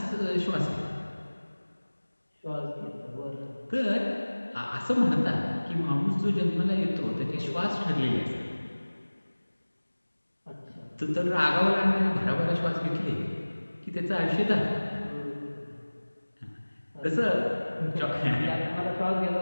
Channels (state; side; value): inverted; both; correlation -1.00